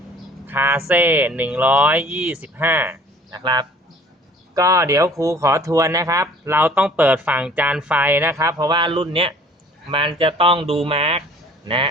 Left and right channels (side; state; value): both; normal; correlation 0.51